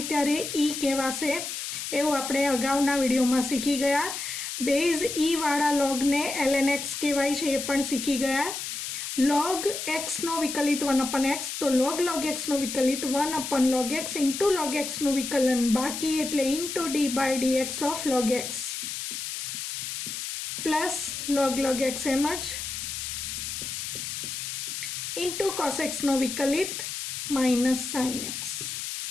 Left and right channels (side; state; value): left; noise; hiss, 5 dB below the sound